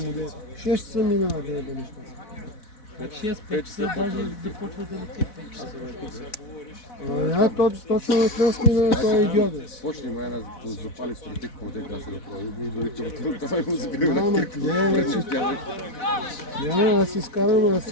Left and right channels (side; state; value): right; late; 4.1 ms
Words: му да. 6 часа минава да еба неща. 6-5 часа даже започва да лети 5 часа. Точно от нас минава този идиот. Почни май да запали стратик, му те каза да прави. И дори това му забива на Няма, кирка. не, вече. Няма, аз си скарам, аз